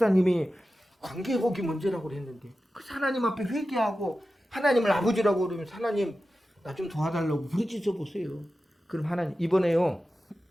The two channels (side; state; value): both; normal; correlation 0.93